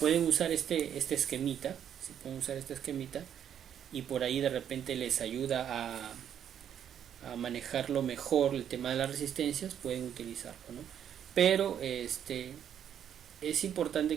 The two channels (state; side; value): quieter; left; 9.3 dB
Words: usar este esquemita, y por ahí de repente les ayuda a manejarlo mejor el tema de las resistencias, pueden utilizarlo, ¿no? Pero es